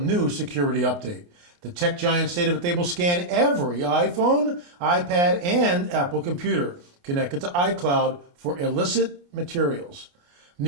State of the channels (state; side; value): late; left; 29 ms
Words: security update. The tech giant stated that they will scan every iPhone, iPad, and Apple computer connected to iCloud for illicit materials.